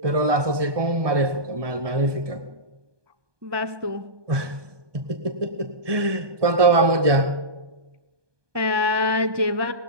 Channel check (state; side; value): late; left; 1.2 ms